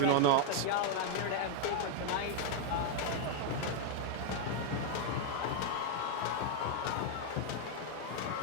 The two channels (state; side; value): different; both; correlation 0.00